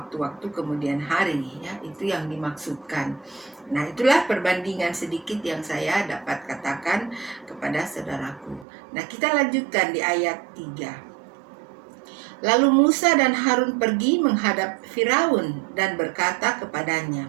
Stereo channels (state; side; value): drops out; left; at 8.7 s